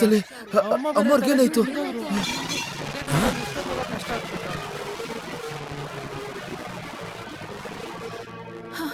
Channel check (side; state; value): both; identical; correlation 1.00